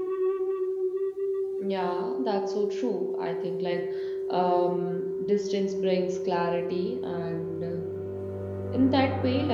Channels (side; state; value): both; identical; correlation 1.00